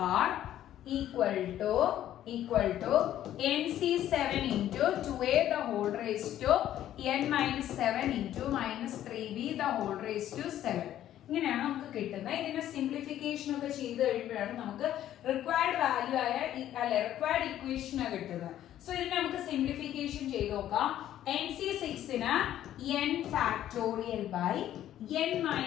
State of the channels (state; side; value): quieter; right; 12.0 dB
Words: r equal to nc7 into 2a the whole raised to n minus 7 into minus 3b the whole raised to 7. ഇങ്ങനെയാണ് നമുക്ക് കിട്ടുന്നത്. ഇതിന്റെ simplification ഒക്കെ ചെയ്ത് കഴിയുമ്പോഴാണ് നമുക്ക് required value ആയ required equation കിട്ടുന്നത്. സോ ഇതിനെ നമുക്ക് സിംപ്ലിഫിക്കേഷൻ ചെയ്ത് നോക്കാം. nc6 ന് n factorial by n